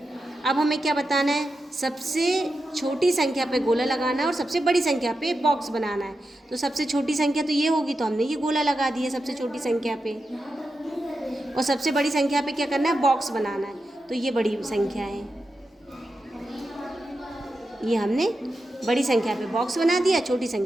अब हमें क्या बताना है? सबसे छोटी संख्या पे गोला लगाना है और सबसे बड़ी संख्या पे बॉक्स बनाना है। तो सबसे छोटी संख्या तो ये होगी, तो हमने ये गोला लगा दिया सबसे छोटी संख्या पे, और सबसे बड़ी संख्या पे क्या करना है? बॉक्स बनाना है। तो ये बड़ी संख्या है, ये हमने बड़ी संख्या पे बॉक्स बना दिया, छोटी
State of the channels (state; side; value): normal; both; correlation 0.89